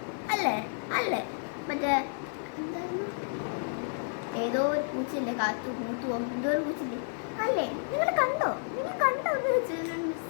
അല്ലേ അല്ലേ? മറ്റേ എന്തായിരുന്നു, ഏതോ ഒരു പൂച്ചയില്ലേ, കാത്തു മൂത്തുവോ എന്തോ ഒരു പൂച്ചില്ലേ, അല്ലേ? നിങ്ങൾ കണ്ടോ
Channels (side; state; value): right; silent; 57 dB below the other